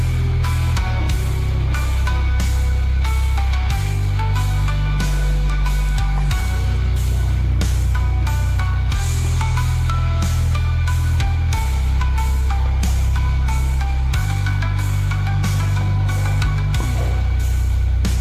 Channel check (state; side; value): identical; both; correlation 1.00